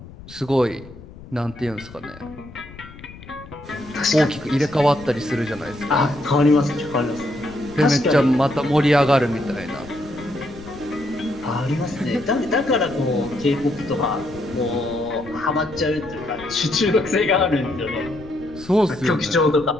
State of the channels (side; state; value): left; noise; rumble, 18 dB below the sound